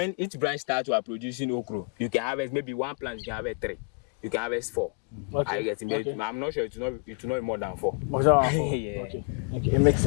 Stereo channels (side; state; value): right; quieter; 35.9 dB